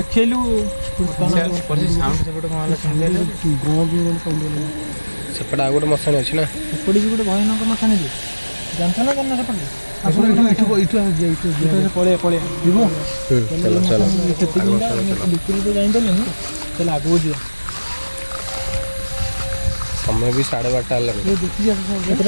ସେପଟେ ଆଉ ଗୋଟେ ମଶାଣି ଅଛି ନା ସେପଟେ ବି ଗୋଟେ ଭୟାନକ ମଶାଣି ଯେ ଜାଣିଛ ନା ଜାଣିନା ସେପଟେ ପଳେଇବା ଯିବୁ ଭିତରକୁ ତ ଯାଇପାରିଲେନି ତାହେଲେ ଆଗକୁ ଯିବା ସମୟ ବି 12:30 ହେଲାଣି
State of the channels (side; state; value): both; inverted; correlation -1.00